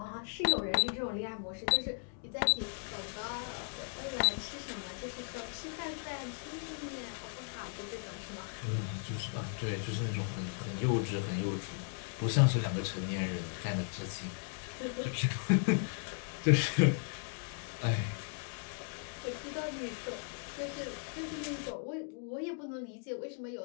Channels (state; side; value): silent; right; 53 dB below the other